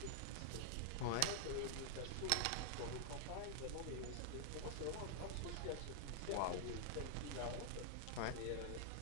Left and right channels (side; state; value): both; different; correlation -0.01